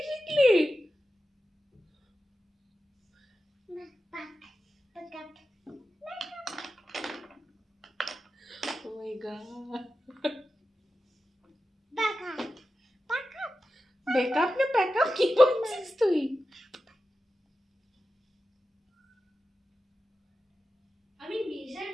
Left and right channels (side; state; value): both; normal; correlation 0.92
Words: শিখলি? মেকআপ মেকআপ ও মাই গড, মেকআপ মেকআপ মেকআপ না প্যাকআপ কি বলছিস তুই? আমি মেজার